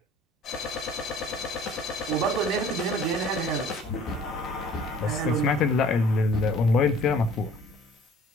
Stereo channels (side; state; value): both; normal; correlation 0.51